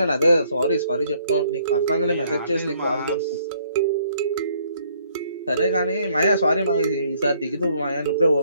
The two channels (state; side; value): inverted; both; correlation -0.65